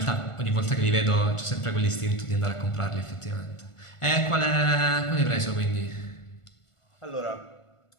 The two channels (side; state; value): right; late; 1.5 ms